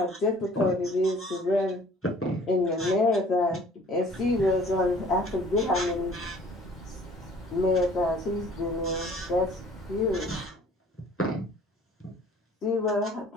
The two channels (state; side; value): normal; both; correlation 0.53